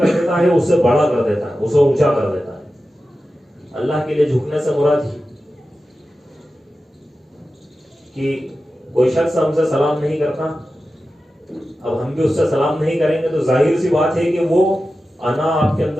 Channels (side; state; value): both; normal; correlation 0.93